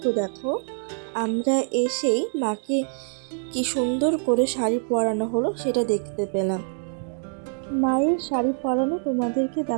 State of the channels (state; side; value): silent; left; digital silence